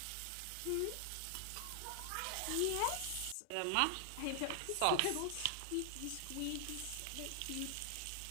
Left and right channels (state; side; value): different; both; correlation 0.00